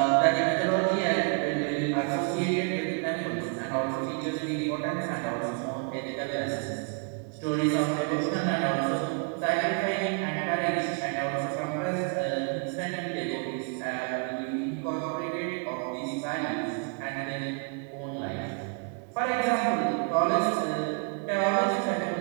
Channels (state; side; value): quieter; left; 38.3 dB